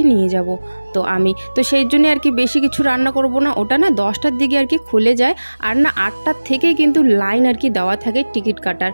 নিয়ে যাব। তো সেই জন্য আর কি বেশি কিছু রান্না করব না। ওটা না 10টার দিকে আর কি খুলে যায়, আর না 8টার থেকে কিন্তু লাইন আর কি দেওয়া থাকে টিকিট কাটার।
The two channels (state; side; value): inverted; both; correlation -1.00